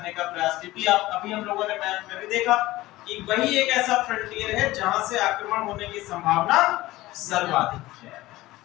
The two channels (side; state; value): right; quieter; 17.7 dB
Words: का प्रयास। क्योंकि आप अभी हम लोगों ने मैप में भी देखा कि वही एक ऐसा फ्रंटियर है जहां से आक्रमण होने की संभावना सर्वाधिक है।